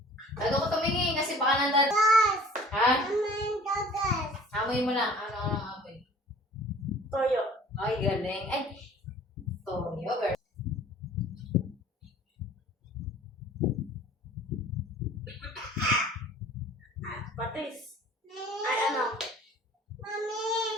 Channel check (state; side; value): normal; both; correlation 0.49